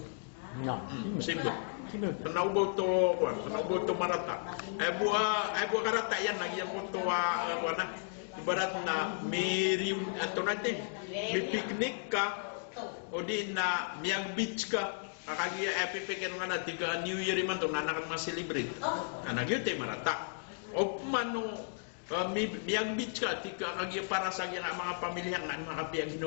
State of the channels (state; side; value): silent; right; digital silence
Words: No. Simbo. Tanaw to marata. Ay buwa karata yan nagyan ko to wana ibarat na may reunion ato natin. May piknik ka o di na miyag beach ka kakagiya epipikin nga na tiga New Year man to nanakan ma-celebrate yun tayo marata o mano miyag beach ka tiga kagiya para sa mga pamilya nga mga kapiyag